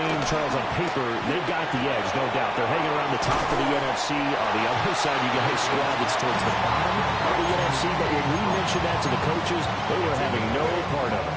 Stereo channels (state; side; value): identical; both; correlation 1.00